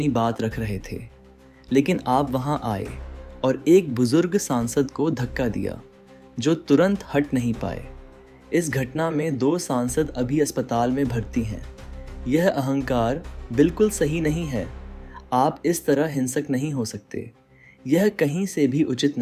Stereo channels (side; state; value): both; identical; correlation 1.00